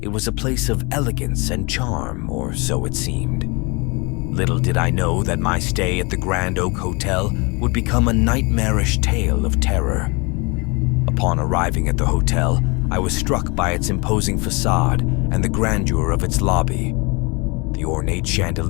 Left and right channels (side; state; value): right; quieter; 28.5 dB